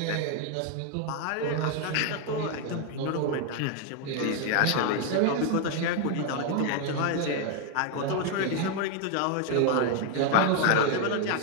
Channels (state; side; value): different; both; correlation 0.01